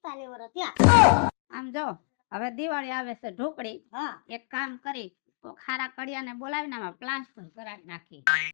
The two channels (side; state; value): right; silent; 59 dB below the other